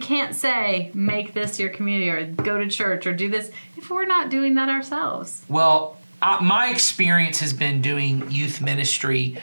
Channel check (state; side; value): inverted; both; correlation -1.00